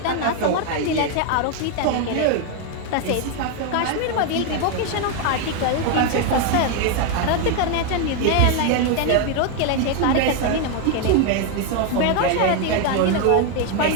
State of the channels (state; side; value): different; both; correlation 0.01